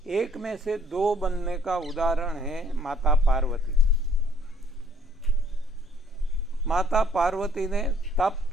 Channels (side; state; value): both; normal; correlation 0.62